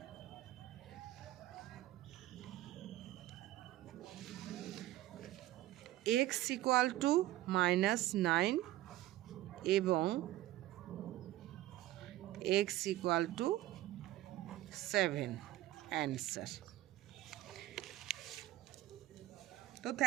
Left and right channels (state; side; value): quieter; left; 15.5 dB